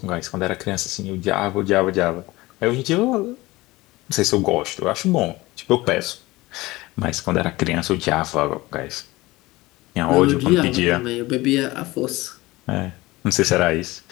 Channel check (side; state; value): right; quieter; 20.1 dB